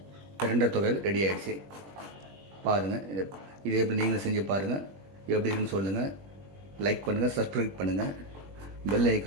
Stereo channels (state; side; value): late; left; 21 ms